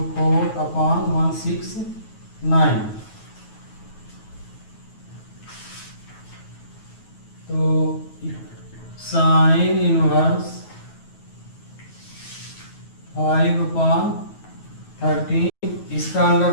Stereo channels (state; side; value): late; right; 9.3 ms